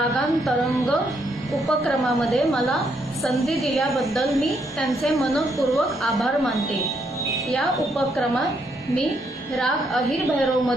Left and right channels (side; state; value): both; normal; correlation 0.75